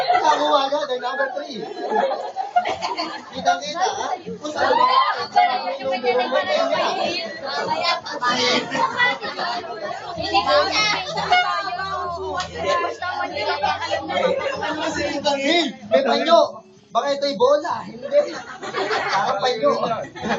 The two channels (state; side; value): identical; both; correlation 1.00